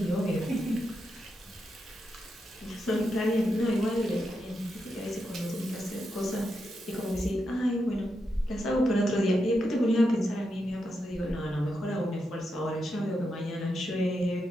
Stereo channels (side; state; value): both; normal; correlation 0.85